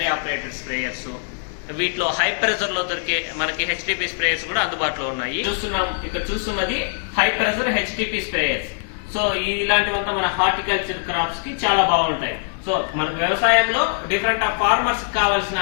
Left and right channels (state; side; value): silent; right; digital silence